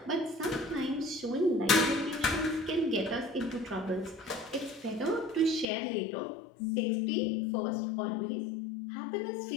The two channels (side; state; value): right; drops out; at 5.7 s